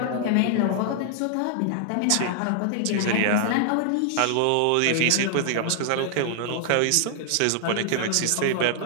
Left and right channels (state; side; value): different; both; correlation -0.01